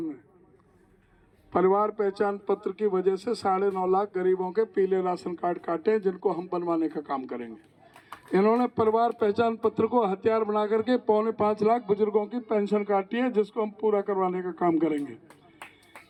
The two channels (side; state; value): both; identical; correlation 1.00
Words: ने, परिवार पहचान पत्र की वजह से 9.5 लाख गरीबों के पीले राशन कार्ड काटे हैं, जिनको हम बनवाने का काम करेंगे। इन्होंने परिवार पहचान पत्र को हथियार बना करके 4.25 लाख बुजुर्गों की पेंशन काटी है, जिसको हम पूरा करवाने का काम करेंगे।